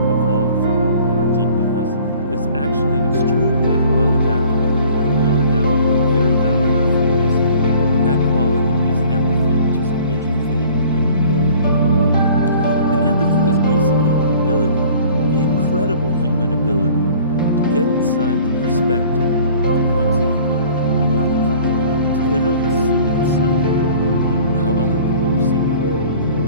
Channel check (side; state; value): both; inverted; correlation -0.50